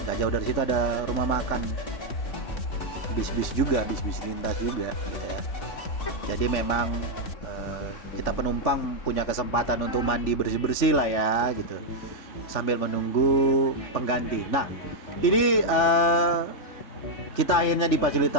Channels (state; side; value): late; right; 3.4 ms